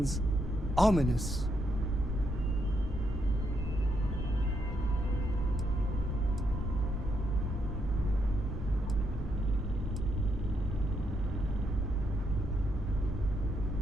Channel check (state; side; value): normal; both; correlation 0.78